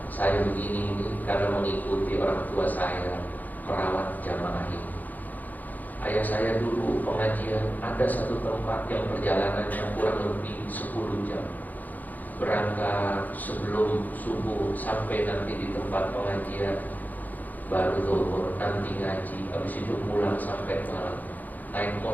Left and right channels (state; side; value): late; right; 0.082 ms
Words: saya begini ini karena mengikuti orang tua saya merawat jamaah ini. Ayah saya dulu pengajian, ada satu tempat yang perjalanannya kurang lebih 10 jam. Berangkat sebelum subuh sampai nanti di tempat pengajian, baru zuhur, nanti ngaji, habis itu pulang sampai malam. Naik